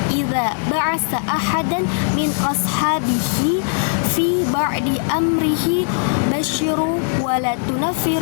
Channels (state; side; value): silent; right; 66 dB below the other